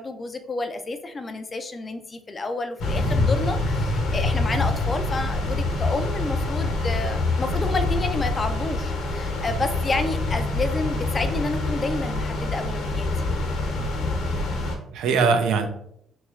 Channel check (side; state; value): both; normal; correlation 0.70